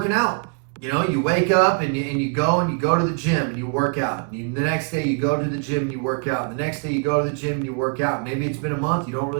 out. You wake up and you go to the gym and you work out. And the next day you go to the gym and you work out. And the next day you go to the gym and you work out. Maybe it's been a month, you don't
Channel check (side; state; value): left; quieter; 36.9 dB